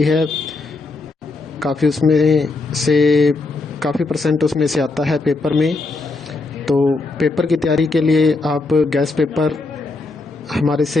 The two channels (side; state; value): right; quieter; 3.5 dB